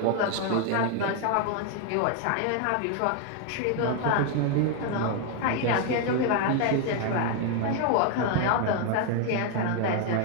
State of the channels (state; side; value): different; both; correlation 0.01